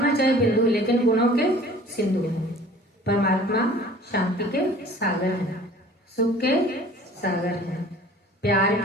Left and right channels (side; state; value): both; normal; correlation 0.48